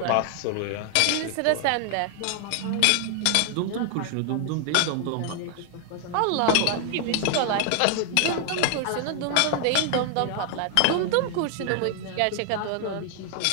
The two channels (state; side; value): different; both; correlation 0.00